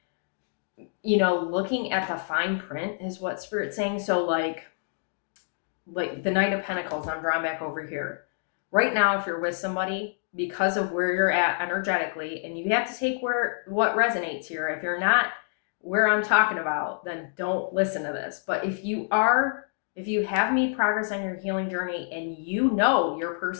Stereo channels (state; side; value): silent; right; digital silence